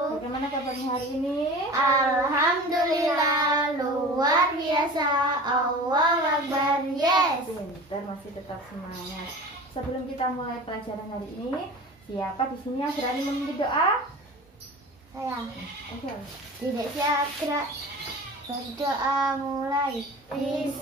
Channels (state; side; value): normal; both; correlation 0.37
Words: Bagaimana kabarnya hari ini? Alhamdulillah luar biasa. Allahu Akbar. Yes. Pintar, masih tetap semangat. Sebelum kita mulai pelajaran hari ini, siapa di sini yang berani memimpin doa? Saya Oke. tidak siap gerak. Berdoa mulai.